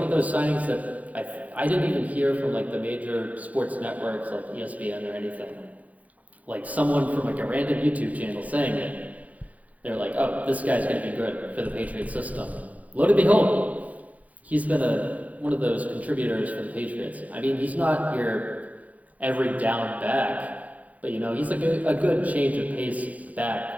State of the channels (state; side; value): late; left; 0.073 ms